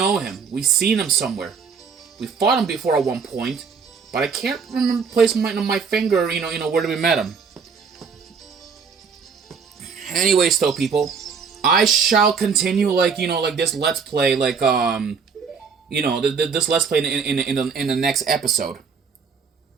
him. We've seen him somewhere. We fought him before at one point, but I can't remember placing my finger, where we met him. Anyways, though, people, I shall continue like this Let's Play, this Let's Play in the next episode.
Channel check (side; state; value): left; quieter; 5.8 dB